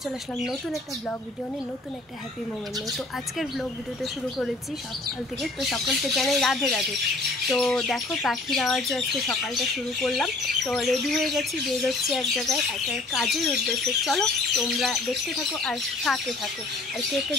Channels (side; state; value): right; quieter; 3.1 dB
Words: চলে আসলাম নতুন একটা ব্লগ ভিডিও নিয়ে, নতুন একটা হ্যাপি মোমেন্ট নিয়ে। তো আজকের ব্লগ ভিডিওটা শুরু করেছি সকাল থেকে। তো সকলকে জানাই রাধে রাধে। তো দেখো পাখির আওয়াজে আজকে সকালটা শুরু করলাম। তো রেডি হয়ে গেছি, বের হচ্ছে এক জায়গায় একটা কাজের উদ্দেশ্যে। চলো তোমরা দেখতে থাকো আর সাথে থাকো, আর কে